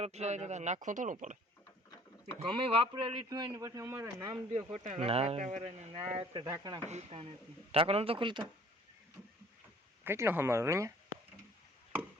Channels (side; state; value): both; normal; correlation 0.54